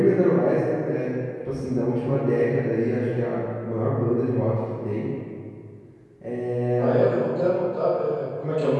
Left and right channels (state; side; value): identical; both; correlation 1.00